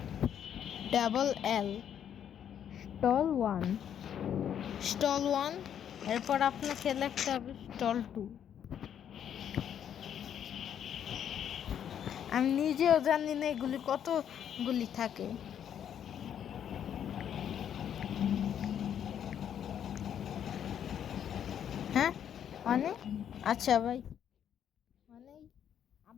TALL, স্টল 1। এরপর আপনাকে লিখতে হবে স্টল 2। আমি নিজেও জানি না এগুলি কতগুলি থাকে। হ্যাঁ মানে আচ্ছা ভাই, মানে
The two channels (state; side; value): quieter; right; 9.2 dB